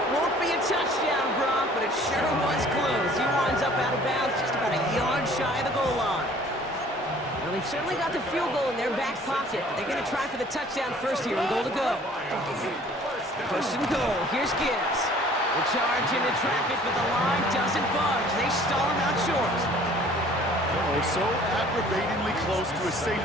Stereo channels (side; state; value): both; normal; correlation 0.53